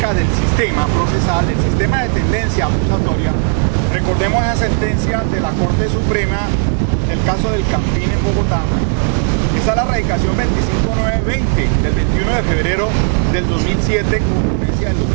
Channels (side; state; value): left; silent; 59 dB below the other